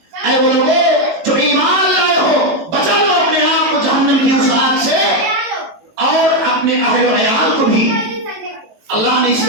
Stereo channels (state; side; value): late; left; 18 ms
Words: اے وہ لوگوں جو ایمان لائے ہو، بچا لو اپنے آپ کو جہنم کی اس آگ سے اور اپنے اہل و عیال کو بھی۔ اللہ نے اس